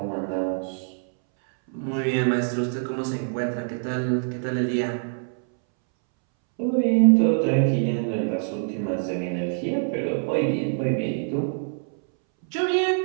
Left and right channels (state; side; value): silent; left; 62 dB below the other